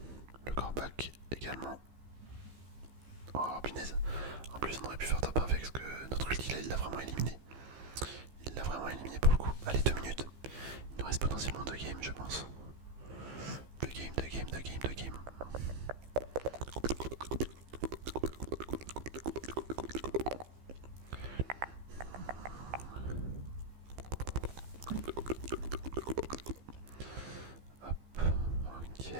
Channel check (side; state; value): left; late; 15 ms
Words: Le corback également. Oh punaise. En plus on aurait pu faire top 1 avec parce que notre ulti là il l'a vraiment éliminé. Il l'a vraiment éliminé pour le coup. Allez 2 minutes. Il nous reste potentiellement 2 games je pense. 2 games. Hop, ok,